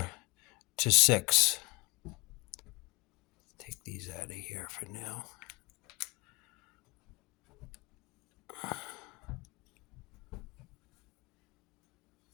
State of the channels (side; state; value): right; quieter; 26.6 dB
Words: to 6. Take these out of here for now.